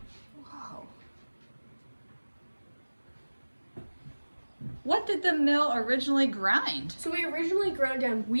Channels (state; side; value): inverted; both; correlation -1.00